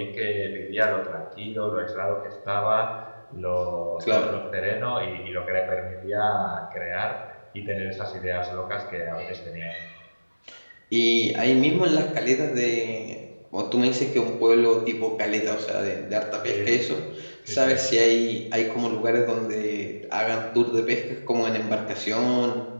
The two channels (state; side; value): inverted; both; correlation -1.00